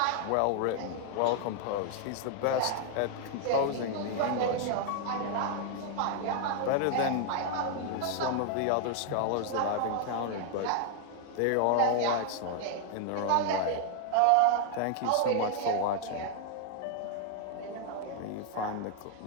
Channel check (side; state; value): both; different; correlation 0.00